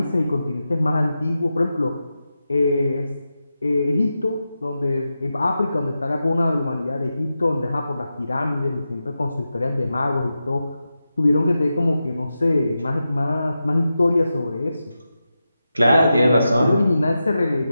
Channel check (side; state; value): both; inverted; correlation -0.90